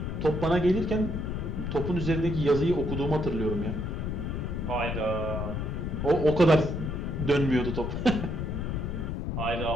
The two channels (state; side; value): noise; left; rumble, 3 dB below the sound